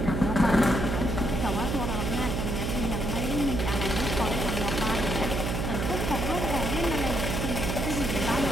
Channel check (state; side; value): noise; right; hum, 1 dB below the sound